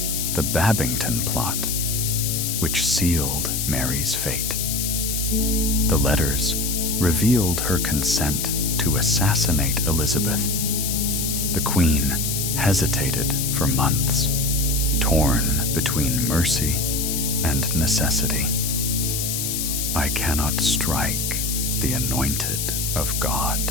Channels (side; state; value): left; noise; hiss, 1 dB below the sound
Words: the Babington plot, which sealed Mary's fate. The letters revealed her consent to assassinate Elizabeth. The Queen hesitated for months, torn between mercy and necessity. "I cannot strike the anointed of